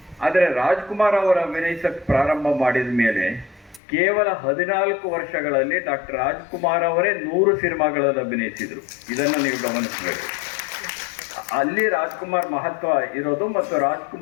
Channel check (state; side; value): drops out; right; at 3.8 s